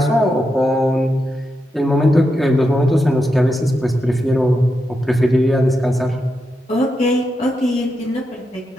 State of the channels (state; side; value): normal; both; correlation 0.86